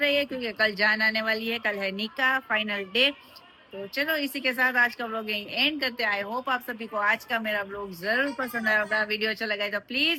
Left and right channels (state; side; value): identical; both; correlation 1.00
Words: है क्योंकि कल जान आने वाली है कल है निकाह फाइनल डे तो चलो इसी के साथ आज का व्लॉग यहीं एंड करते हैं आई होप आप सभी को आज का मेरा व्लॉग जरूर पसंद आया होगा वीडियो अच्छा लगा है तो